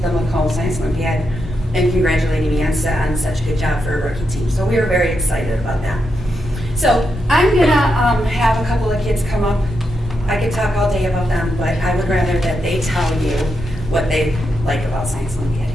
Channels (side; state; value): both; normal; correlation 0.84